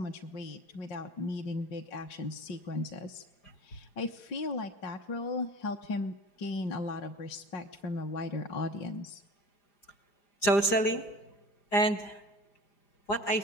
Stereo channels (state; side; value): late; right; 5.0 ms